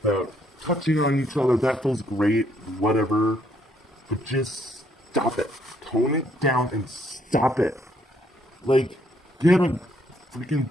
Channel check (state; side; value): normal; both; correlation 0.69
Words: that touching on each other, that feels great, whatever. But just stop it. Tone it down and stop it. Like, get a freaking